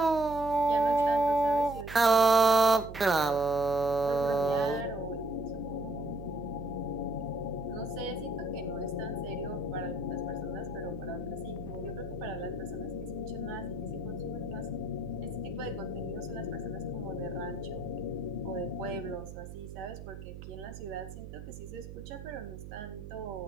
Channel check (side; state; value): right; noise; hum, 11 dB below the sound